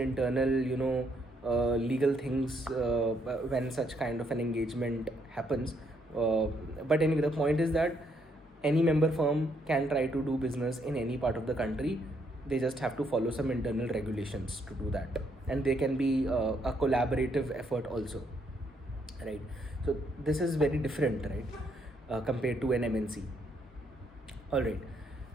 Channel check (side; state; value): both; normal; correlation 0.73